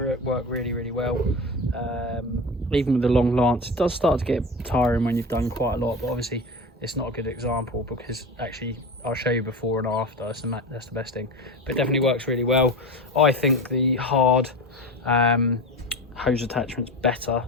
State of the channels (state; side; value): normal; both; correlation 0.27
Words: really, really well. Even with the long lance, it does start to get tiring when you've done quite a lot, but obviously it's not a good example because actually I'll show you before and after. That's the best thing, but it definitely works really well. I think the hard hose attachment's better,